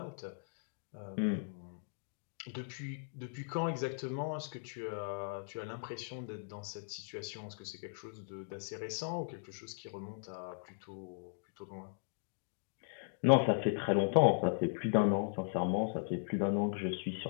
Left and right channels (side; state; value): right; silent; digital silence